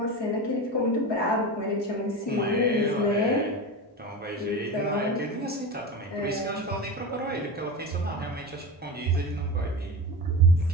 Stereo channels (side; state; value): both; normal; correlation 0.24